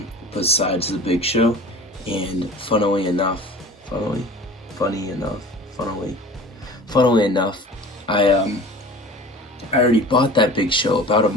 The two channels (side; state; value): both; normal; correlation 0.40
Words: besides the Big Show, and funnily enough, I already bought that Big Show about a